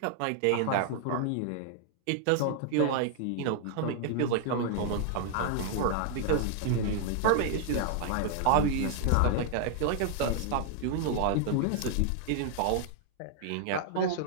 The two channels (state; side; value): different; both; correlation 0.00